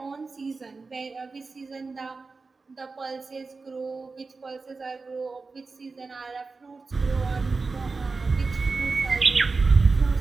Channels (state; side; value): quieter; left; 4.1 dB